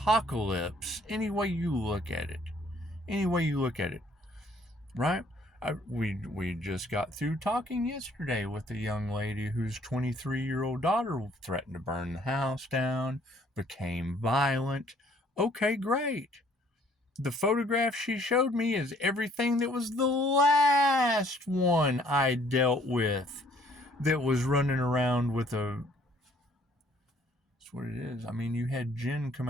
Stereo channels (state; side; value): normal; both; correlation 0.61